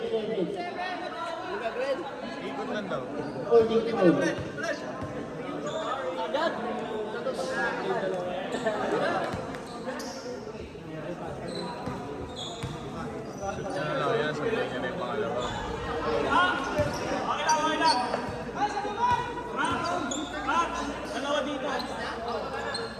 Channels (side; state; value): both; identical; correlation 1.00